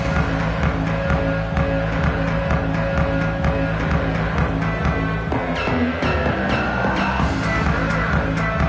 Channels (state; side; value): identical; both; correlation 1.00